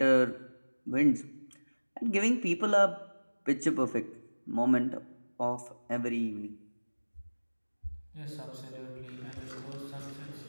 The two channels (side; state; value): both; inverted; correlation -1.00